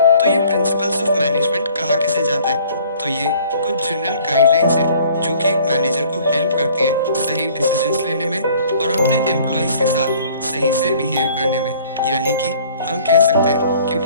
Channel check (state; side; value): inverted; both; correlation -0.55